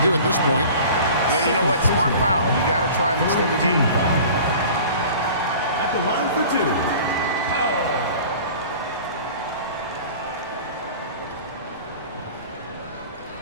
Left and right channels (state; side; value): inverted; both; correlation -0.42